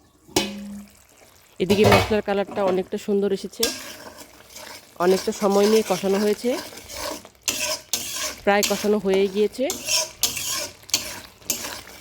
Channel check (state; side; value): identical; both; correlation 1.00